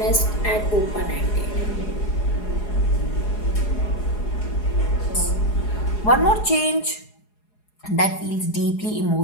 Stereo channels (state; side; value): late; right; 4.8 ms